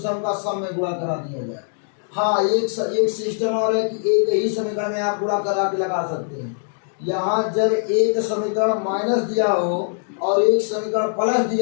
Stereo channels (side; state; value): right; silent; digital silence